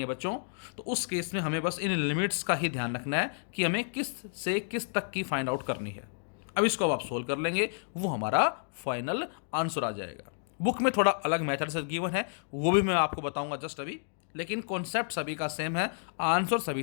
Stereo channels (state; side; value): silent; right; digital silence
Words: है बच्चों, तो उस केस में हमें बस इन लिमिट्स का ही ध्यान रखना है कि हमें किस से किस तक की फाइंड आउट करनी है। अब इसको अब आप सोल्व कर लेंगे, वो हमारा फाइनल आंसर आ जाएगा। बुक में थोड़ा अलग मेथड से गिवन है, वो भी मैं आपको बताऊंगा जस्ट अभी, लेकिन कॉन्सेप्ट सभी का सेम है, आंसर